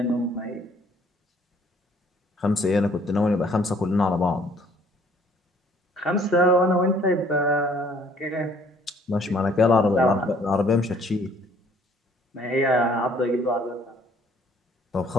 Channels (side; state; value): both; normal; correlation 0.59